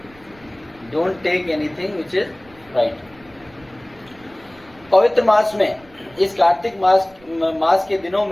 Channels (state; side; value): noise; right; rumble, 27 dB below the sound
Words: Don't take anything which is fried. पवित्र मास में, इस कार्तिक मास के दिनों